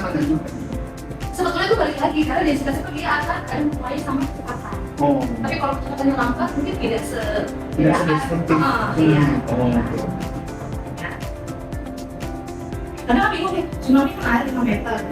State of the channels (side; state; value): both; identical; correlation 1.00